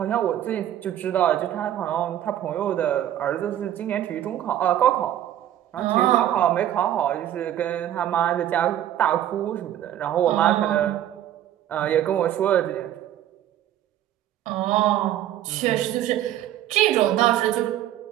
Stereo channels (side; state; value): left; quieter; 11.9 dB